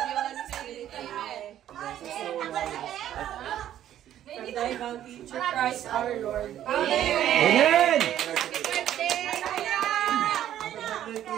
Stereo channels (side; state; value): left; quieter; 11.6 dB